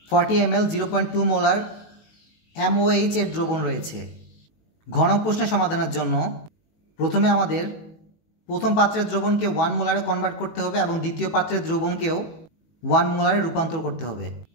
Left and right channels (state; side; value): late; right; 18 ms